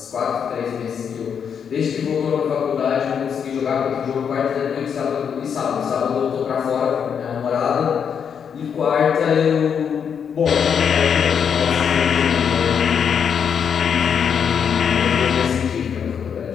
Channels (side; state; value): right; quieter; 7.4 dB